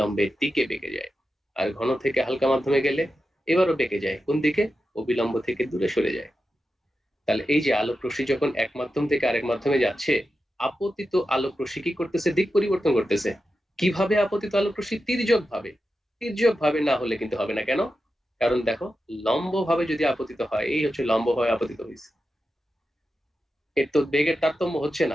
দিকে বেঁকে যায়। আর ঘন থেকে হালকা মাধ্যমে গেলে এবারও বেঁকে যায় কোন দিকে? অবিলম্ব থেকে দূরে সরে যায়। তাহলে এই যে আলোক রশ্মি যখন এক মাধ্যম থেকে আরেক মাধ্যমে যাচ্ছে, আপতিত আলোক রশ্মি কি করতেছে? দিক পরিবর্তন করতেছে। কিভাবে আপতিত আলোক রশ্মি? তির্যক ভাবে। তির্যক ভাবে না হলে কিন্তু হবে না। কেন? কারণ দেখো, লম্ব ভাবে যদি আপতিত হয়, এই হচ্ছে লম্ব ভাবে আপতিত হয়েছে, এর তো বেগের তারতম্য হচ্ছে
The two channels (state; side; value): normal; both; correlation 0.90